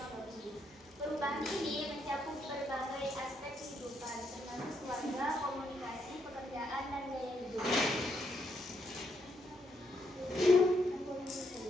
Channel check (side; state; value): right; noise; hum, 28 dB below the sound